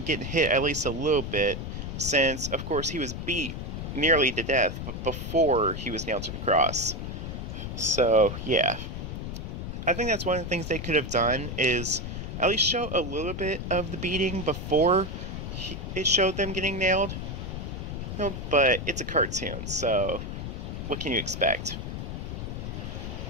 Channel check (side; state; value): left; noise; rumble, 6 dB below the sound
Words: getting hit at least a little bit, since, of course, he was beat nearly to death, but before he was nailed to the cross. So, yeah. I think that's one of the things they could have done, is at least show a little bit of the beating before it showed them getting nailed. But it's a cartoon, so what can you expect?